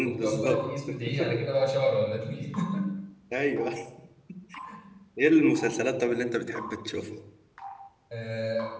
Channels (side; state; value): both; identical; correlation 1.00